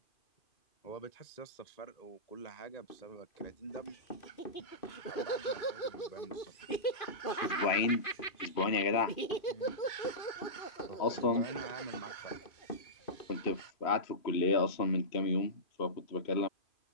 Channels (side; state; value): right; late; 2.5 ms